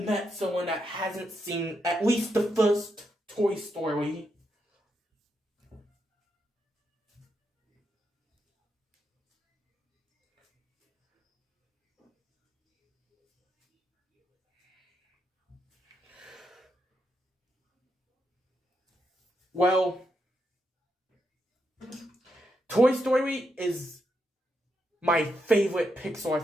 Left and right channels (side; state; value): both; normal; correlation 0.82